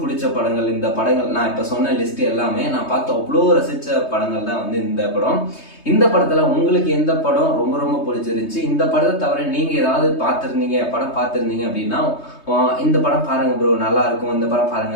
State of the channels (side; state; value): right; late; 3.2 ms